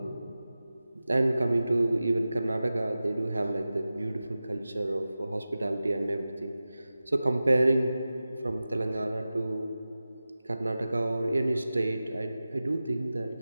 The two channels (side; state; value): both; inverted; correlation -0.95